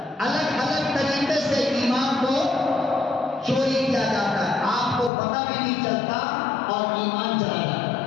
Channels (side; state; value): right; drops out; at 5.1 s